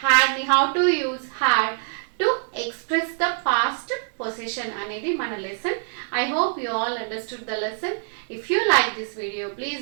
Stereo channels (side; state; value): left; silent; digital silence